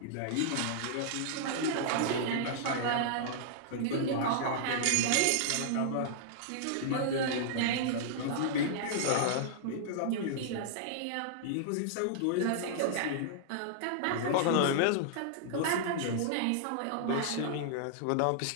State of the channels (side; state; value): both; different; correlation -0.01